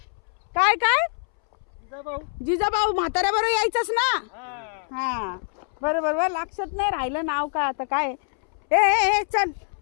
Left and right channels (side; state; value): right; silent; 62 dB below the other